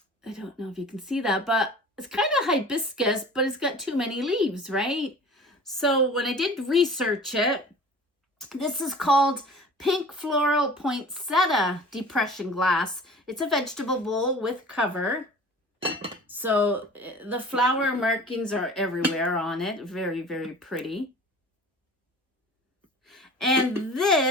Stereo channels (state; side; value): normal; both; correlation 0.42